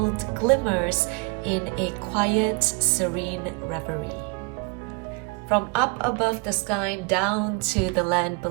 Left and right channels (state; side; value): quieter; left; 30.0 dB